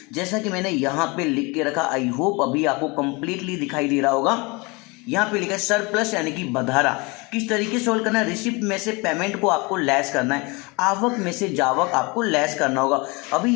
जैसा कि मैंने यहाँ पे लिख के रखा। आई होप अभी आपको कंप्लीटली दिखाई दे रहा होगा। यहाँ पे लिखा है सरप्लस यानी कि बधारा। किस तरीके से सोल्व करना है, रिसिप्ट में से पेमेंट को आपको लेस करना है, आवक में से जावक आपको लेस करना होगा। अभी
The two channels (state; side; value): quieter; right; 27.3 dB